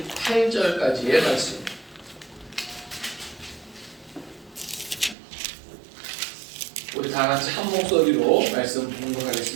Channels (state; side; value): drops out; left; at 5.2 s